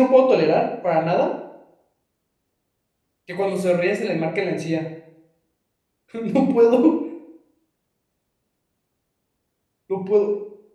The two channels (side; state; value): both; identical; correlation 1.00